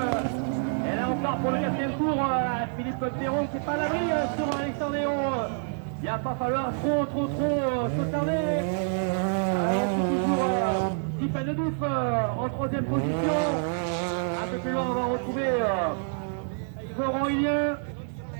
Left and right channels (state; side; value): silent; left; 60 dB below the other